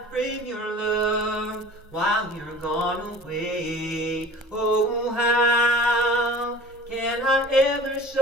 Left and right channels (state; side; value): normal; both; correlation 0.44